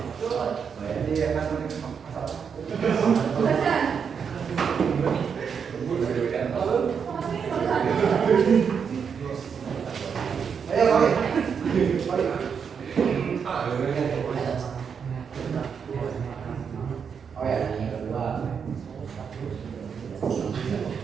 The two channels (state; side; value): quieter; left; 6.7 dB